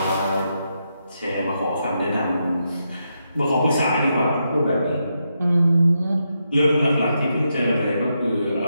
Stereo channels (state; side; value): inverted; both; correlation -0.83